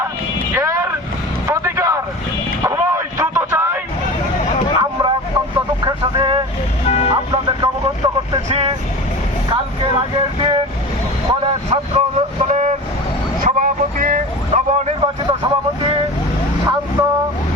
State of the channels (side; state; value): both; normal; correlation 0.33